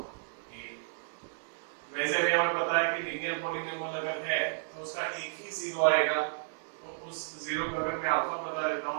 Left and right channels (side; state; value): left; silent; digital silence